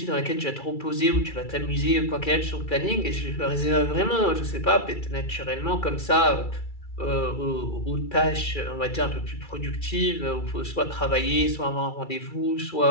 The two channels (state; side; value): late; right; 2.3 ms